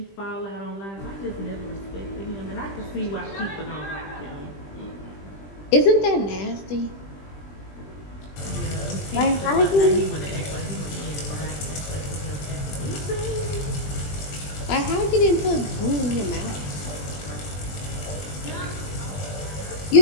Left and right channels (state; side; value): late; right; 20 ms